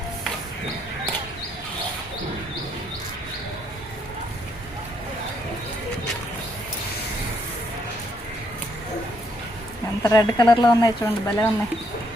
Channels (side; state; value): both; normal; correlation 0.72